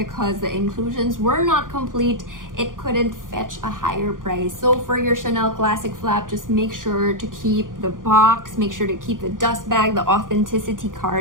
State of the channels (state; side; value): late; left; 0.89 ms